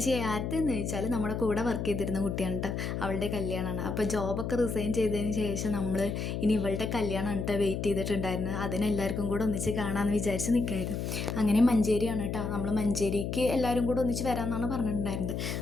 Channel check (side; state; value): left; noise; hum, 3 dB below the sound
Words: ആരുടെന്ന് ചോദിച്ചാൽ നമ്മുടെ കൂടെ വർക്ക് ചെയ്തിരുന്ന കുട്ടിയാണ് കേട്ടോ. അവളുടെ കല്യാണമാണ്. അപ്പോൾ ജോബൊക്കെ റിസൈൻ ചെയ്തതിന് ശേഷം നമ്മൾ ഇനി ഇവളുടെ കല്യാണം കേട്ടോ വെയിറ്റ് ചെയ്തിട്ടുണ്ടായിരുന്നു. അതിനെല്ലാവർക്കും കൂടെ ഒന്നിച്ച് കാണാമെന്ന് വിചാരിച്ച് നിൽക്കായിരുന്നു. അങ്ങനെ മഞ്ചേരിയാണ് കേട്ടോ. നമ്മൾ മഞ്ചേരിക്ക് എല്ലാവരും കൂടെ ഒന്നിച്ച് വരാമെന്നാണ് പറഞ്ഞിട്ടുണ്ടായിരുന്നത്.